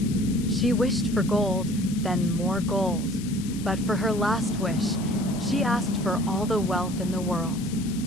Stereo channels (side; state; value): left; noise; hiss, 15 dB below the sound